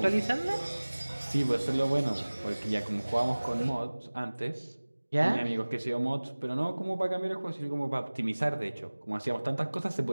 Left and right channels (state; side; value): inverted; both; correlation -1.00